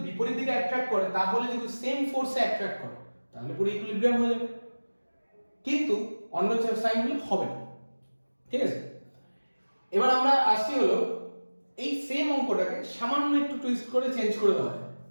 বিপরীত দিকে অ্যাট্রাক্ট করে, তাহলে যদি সেম ফোর্সে অ্যাট্রাক্ট করে তাহলে পুরো ইকুইলিব্রিয়াম হয়ে যাবে। কিন্তু অন্য সাইন হলে হবে না। ঠিক আছে, এবার আমরা আসছি হলো এই সেম অঙ্কটাকে সামান্য একটু টুইস্ট করে চেঞ্জ করে দেওয়া হয়।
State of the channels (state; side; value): inverted; both; correlation -1.00